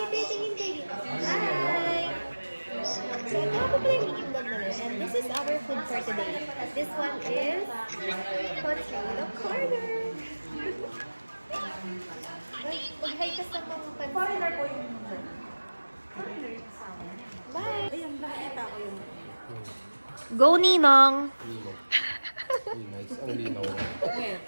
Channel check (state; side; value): inverted; both; correlation -1.00